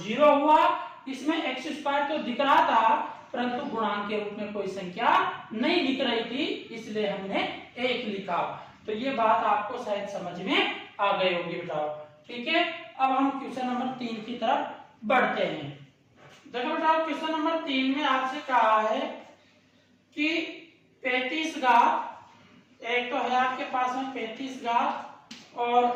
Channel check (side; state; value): both; identical; correlation 1.00